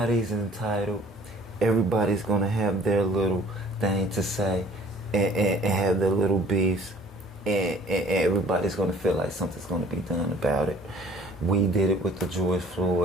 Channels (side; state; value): both; normal; correlation 0.52